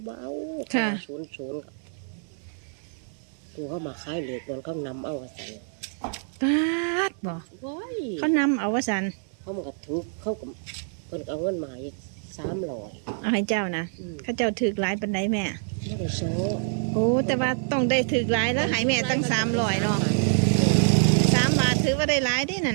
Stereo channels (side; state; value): left; silent; 61 dB below the other